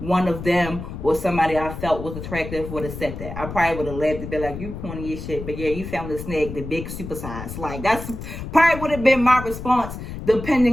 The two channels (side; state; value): left; noise; rumble, 9 dB below the sound